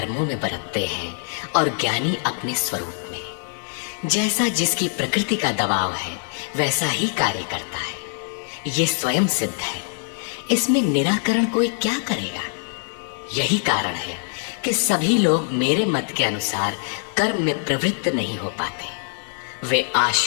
में बरतते हैं और ज्ञानी अपने स्वरूप में। जैसा जिसकी प्रकृति का दबाव है वैसा ही कार्य करता है, ये स्वयं सिद्ध है। इसमें निराकरण कोई क्या करेगा? यही कारण है कि सभी लोग मेरे मत के अनुसार कर्म में प्रवृत्त नहीं हो पाते। वे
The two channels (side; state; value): right; silent; 63 dB below the other